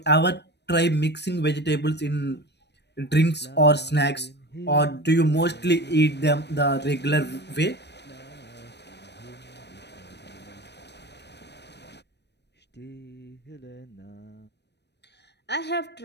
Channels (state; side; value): late; right; 0.50 ms